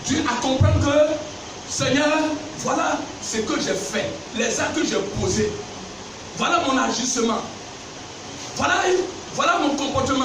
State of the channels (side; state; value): both; identical; correlation 1.00